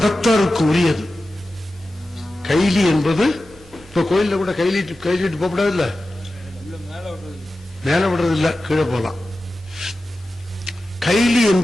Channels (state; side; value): normal; both; correlation 0.94